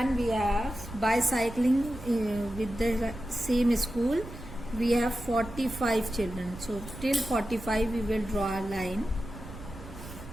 we have bicycling with the same school. We have 45 children. So till 45 we will draw a line.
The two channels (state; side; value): noise; right; rumble, 13 dB below the sound